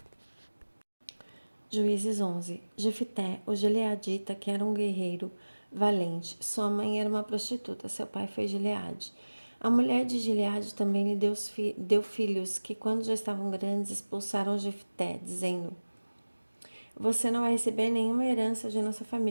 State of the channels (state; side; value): inverted; both; correlation -1.00